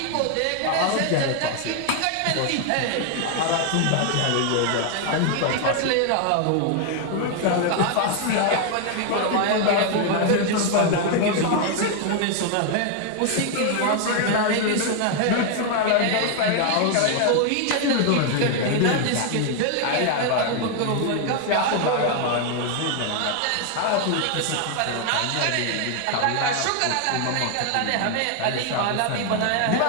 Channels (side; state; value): both; different; correlation 0.00